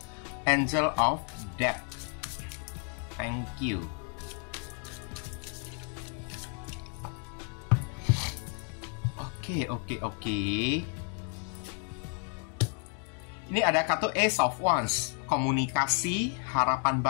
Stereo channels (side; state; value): right; quieter; 39.5 dB